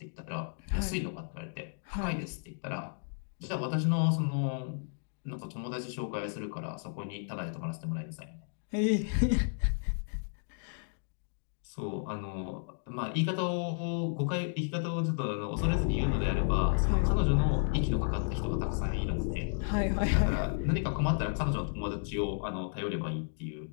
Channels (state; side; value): silent; right; digital silence